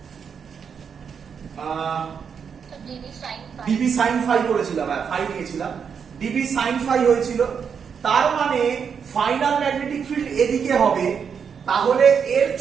ডিবি sin ফাই করেছিলাম, হ্যাঁ ফাই নিয়েছিলাম, ডিবি sin ফাই হয়েছিল। তার মানে ফাইনাল ম্যাগনেটিক ফিল্ড এদিকে হবে, তাহলে এর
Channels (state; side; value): quieter; left; 6.8 dB